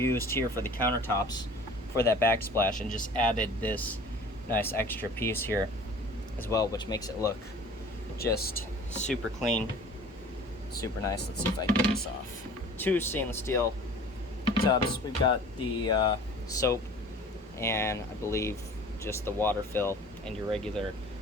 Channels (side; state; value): both; normal; correlation 0.45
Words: here for the countertops for that backsplash, and just added this nice extra piece here as well, which makes it look just super clean, super nice. Let's see if I can get this off. 2 stainless steel tubs. We've got the soap, and I believe just the water fill, and your regular